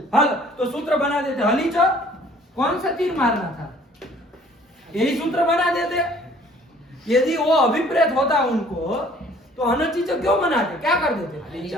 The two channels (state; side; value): normal; both; correlation 0.55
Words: हल। तो सूत्र बना देते हली च, कौन सा तीर मारना था? यही सूत्र बना देते। यदि वो अभिप्रेत होता उनको तो अनचित क्यों बनाते? क्या कर देते?